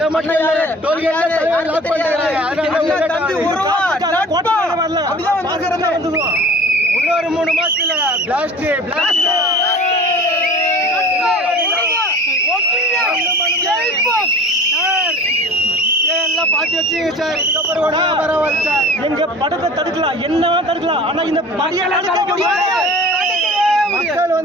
இன்னொரு 3 மாசத்துல பிளாஸ்ட் எல்லாம் பாத்து வச்சுங்க சார். இதுக்கப்புறம் பரவாயில்ல சார். எங்க படத்தை தடுக்கலாம், என்னவா தடுக்கலாம். ஆனா இந்த மக்கள்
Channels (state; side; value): normal; both; correlation 0.42